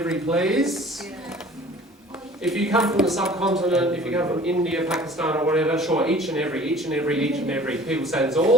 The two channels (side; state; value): both; normal; correlation 0.48